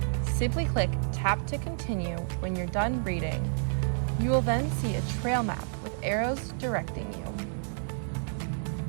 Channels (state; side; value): silent; left; digital silence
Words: Simply click Tap to continue when you're done reading. You will then see a trail map with arrows directing you.